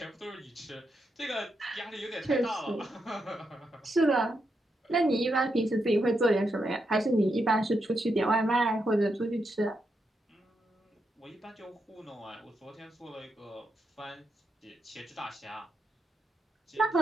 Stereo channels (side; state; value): both; normal; correlation 0.83